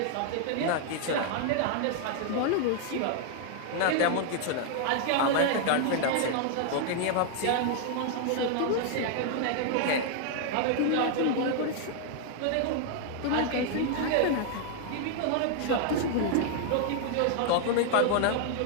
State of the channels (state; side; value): different; both; correlation 0.00